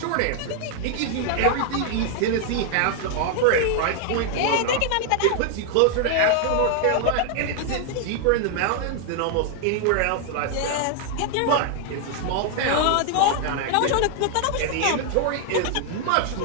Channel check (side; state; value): both; different; correlation 0.00